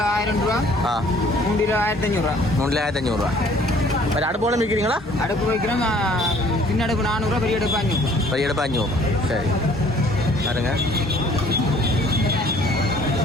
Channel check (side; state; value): both; normal; correlation 0.56